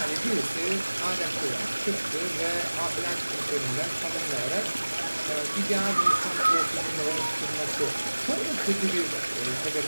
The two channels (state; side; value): inverted; both; correlation -1.00